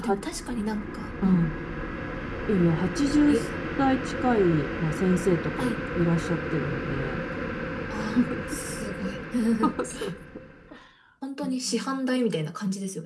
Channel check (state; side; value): identical; both; correlation 1.00